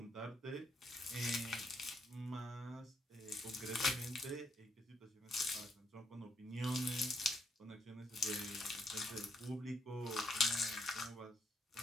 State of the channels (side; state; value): both; normal; correlation 0.73